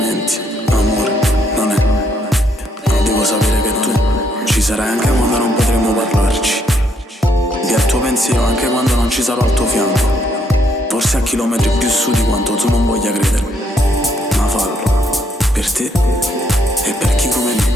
amore non è. Devo sapere che tu ci sarai anche quando non potremo parlarci, e al tuo pensiero anche quando non ci sarò al tuo fianco, forse a chilometri più su di quanto tu non voglia credermi. Ma fallo, per te e per chi come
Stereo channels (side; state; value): both; normal; correlation 0.72